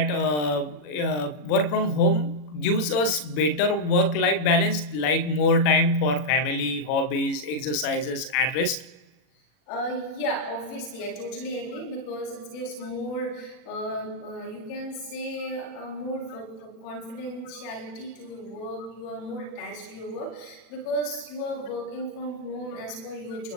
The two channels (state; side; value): late; right; 40 ms